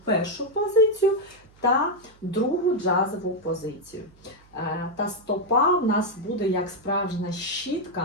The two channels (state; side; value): noise; right; hum, 28 dB below the sound